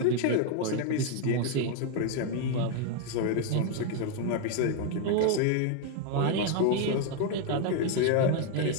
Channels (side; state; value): both; different; correlation 0.01